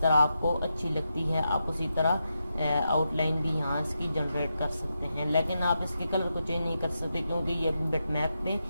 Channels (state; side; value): inverted; both; correlation -0.86